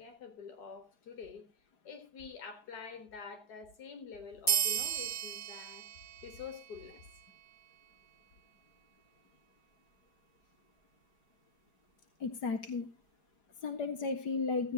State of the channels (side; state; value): right; late; 4.7 ms